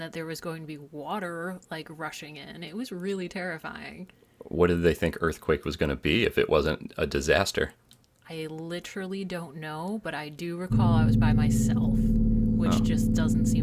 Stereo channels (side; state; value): both; identical; correlation 1.00